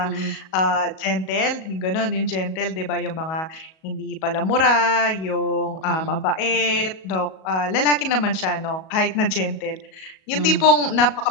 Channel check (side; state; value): right; late; 37 ms